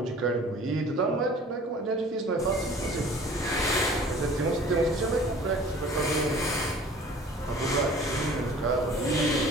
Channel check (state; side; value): normal; both; correlation 0.47